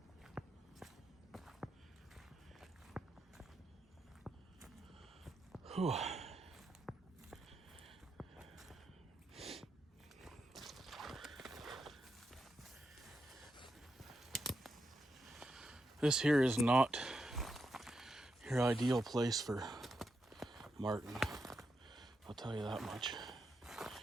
Whew. This here is not your ideal place for marten. I'll tell you that much.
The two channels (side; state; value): both; normal; correlation 0.85